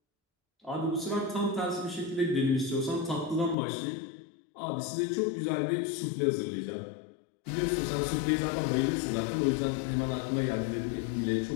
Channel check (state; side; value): drops out; right; at 3.6 s